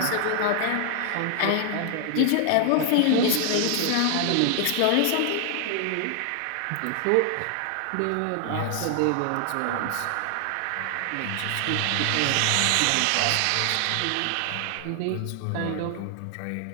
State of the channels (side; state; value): both; different; correlation 0.00